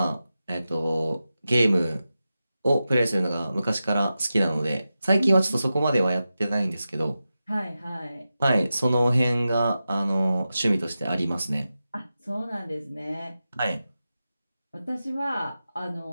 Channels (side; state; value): both; inverted; correlation -0.92